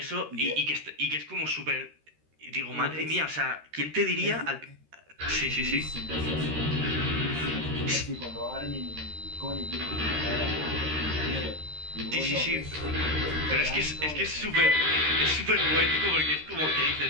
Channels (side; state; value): left; late; 13 ms